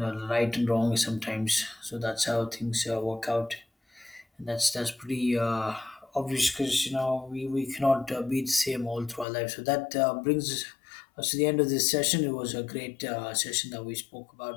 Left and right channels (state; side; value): drops out; right; at 9.2 s